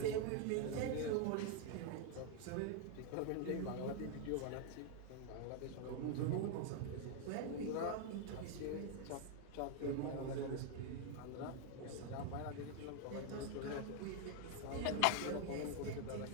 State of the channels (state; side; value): different; both; correlation 0.00